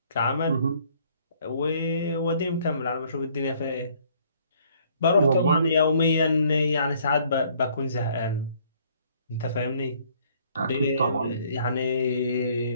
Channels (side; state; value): both; inverted; correlation -0.62